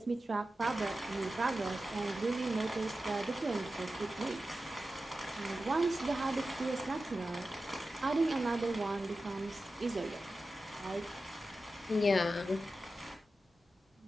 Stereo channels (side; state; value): both; normal; correlation 0.93